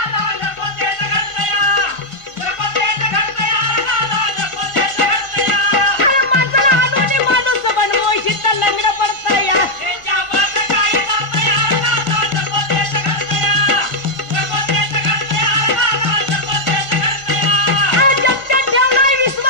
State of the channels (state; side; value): late; right; 1.5 ms